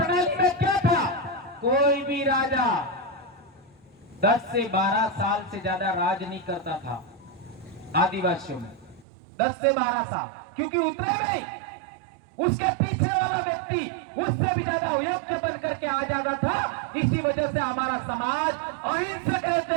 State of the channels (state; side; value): drops out; left; at 9.1 s